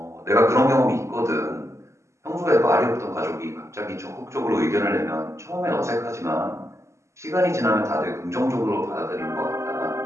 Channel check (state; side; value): late; left; 0.14 ms